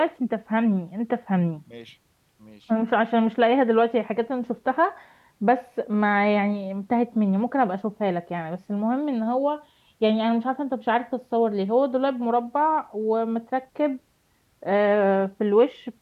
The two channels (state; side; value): identical; both; correlation 1.00